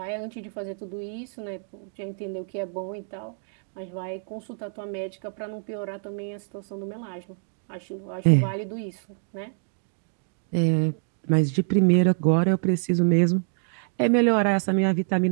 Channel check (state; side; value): silent; left; digital silence